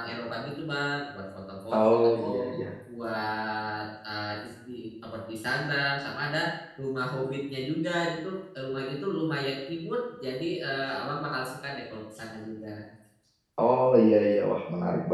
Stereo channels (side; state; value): both; identical; correlation 1.00